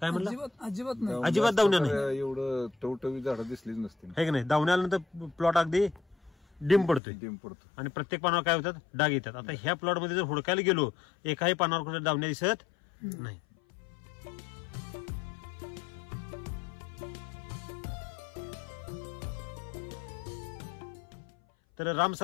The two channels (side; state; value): right; drops out; at 7.0 s